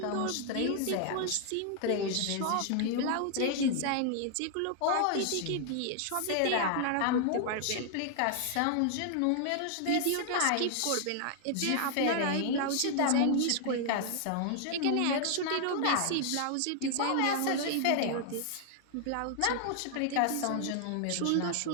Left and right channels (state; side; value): different; both; correlation 0.00